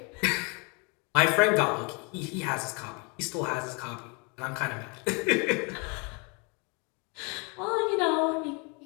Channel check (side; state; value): right; quieter; 32.7 dB